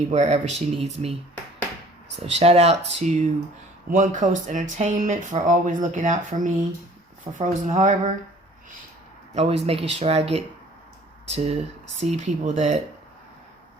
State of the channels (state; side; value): normal; both; correlation 0.53